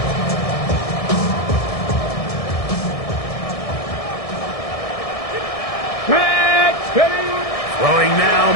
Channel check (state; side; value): late; right; 1.6 ms